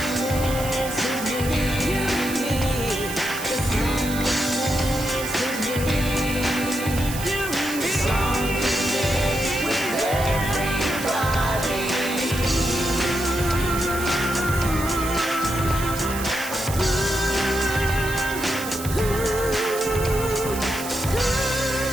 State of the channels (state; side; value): noise; right; hiss, 10 dB below the sound